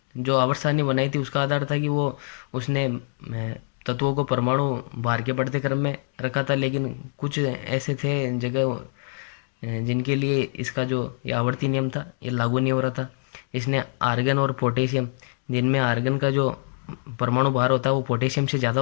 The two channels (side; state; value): right; silent; digital silence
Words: जो आवर्त सारणी बनाई थी उसका आधार था कि उसने तत्वों को परमाणु भार के बढ़ते क्रम में रखा था, लेकिन कुछ ऐसे थे जगह जिनके लिए इसका जो ये आवर्ती नियम था ये लागू नहीं हो रहा था। इसने आर्गन और पोटेशियम, जिनमें आर्गन का जो परमाणु भार होता है वो पोटेशियम से ज़्यादा